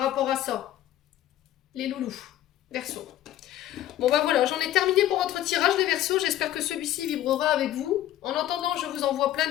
à ça. Les loulous, Verseaux. Bon ben voilà, j'en ai terminé pour votre tirage les Verseaux, j'espère que celui-ci vibrera avec vous. En attendant, je vous envoie plein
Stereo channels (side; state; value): right; quieter; 12.9 dB